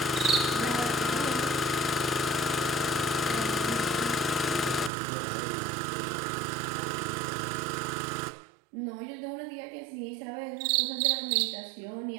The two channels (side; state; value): left; drops out; at 4.9 s